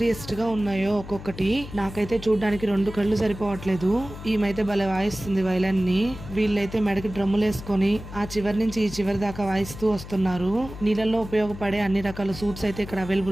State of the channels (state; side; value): noise; left; hum, 13 dB below the sound